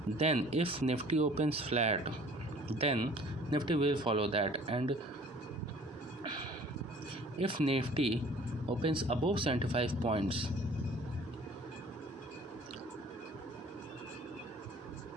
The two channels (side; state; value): both; normal; correlation 0.51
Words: then if Nifty opens flat, then Nifty will follow that. And if Nifty opens above 75 points,